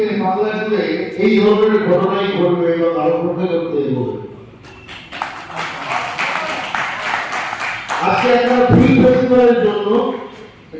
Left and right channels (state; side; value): identical; both; correlation 1.00